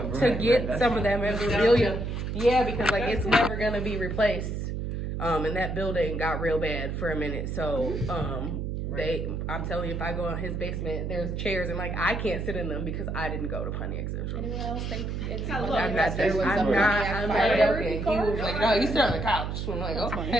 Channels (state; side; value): noise; right; hum, 3 dB below the sound